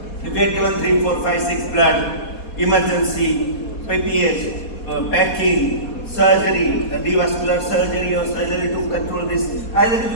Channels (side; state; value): right; late; 4.2 ms